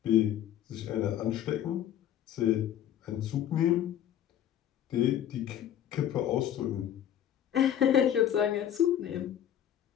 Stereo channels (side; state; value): right; quieter; 10.5 dB